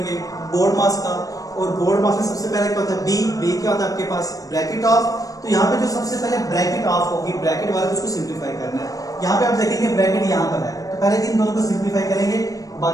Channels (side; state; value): right; late; 0.17 ms